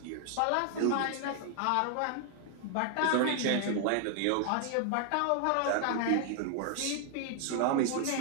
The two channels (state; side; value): different; both; correlation 0.00